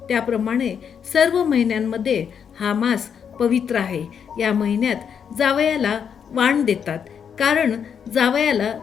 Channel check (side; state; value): right; quieter; 7.5 dB